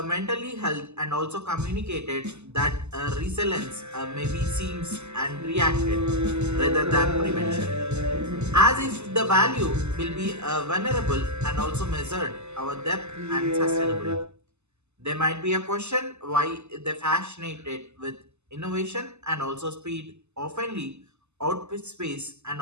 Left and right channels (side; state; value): left; late; 0.82 ms